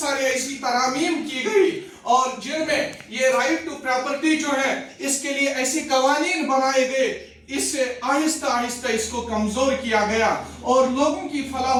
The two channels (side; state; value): both; identical; correlation 1.00